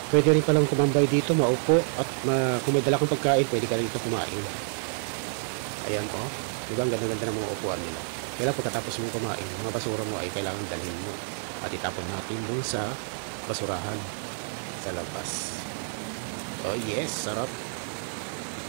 Pwede rin palang kumambay dito, maupo at kung may dala kang pagkain, pwede ka rin dito kumain. Ayan po, diba ang ganda-ganda ng mga upuan nila. Kaya pagkatapos mong kumain, mga basura mo ay kailangan dalhin mo at itapon natin dun sa basurahan sa labas. Oh yes, sarap.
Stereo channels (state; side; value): silent; left; digital silence